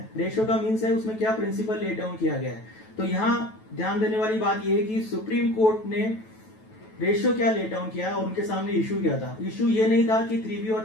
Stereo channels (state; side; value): late; right; 9.2 ms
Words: रेशियो का मीन्स है उसमें क्या प्रिंसिपल लेट डाउन किया गया है। तो यहाँ ध्यान देने वाली बात यह है कि सुप्रीम कोर्ट ने रेशियो क्या लेट डाउन किया और उनके सामने इशू क्या था। इशू ये नहीं था कि 3B और